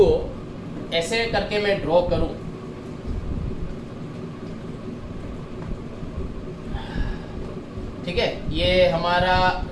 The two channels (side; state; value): both; identical; correlation 1.00